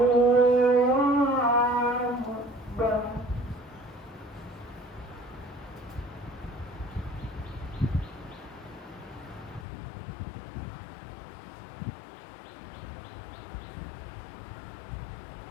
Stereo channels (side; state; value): right; drops out; at 9.7 s